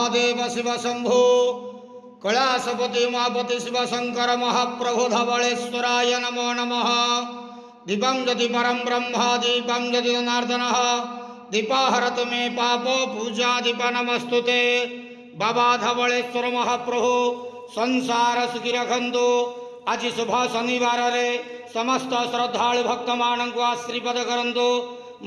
महादेव शिव शंभो कैलासपति उमापति शिव शंकर महाप्रभु धवलेश्वराय नमो नमः। दीपं ज्योति परम ब्रह्म दीपं ज्योति जनार्दन दीपाहरतु मे पापो पूजा दीप नमस्तुते। बाबा धवलेश्वर महाप्रभु संसार सुखी रखंतु। आज शुभ शनिवार रे समस्त श्रद्धालु भक्त मान को आशीर्वाद करंतु,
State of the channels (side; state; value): both; identical; correlation 1.00